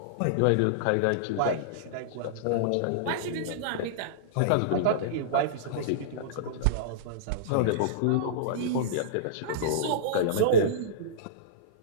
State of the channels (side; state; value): both; different; correlation -0.03